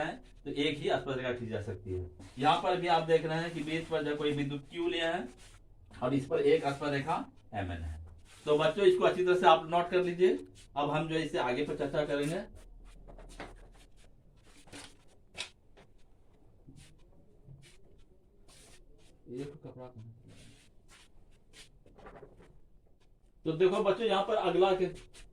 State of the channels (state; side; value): identical; both; correlation 1.00